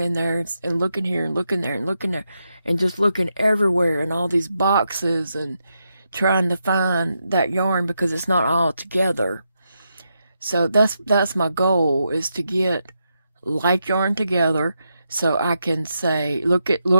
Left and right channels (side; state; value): both; inverted; correlation -0.84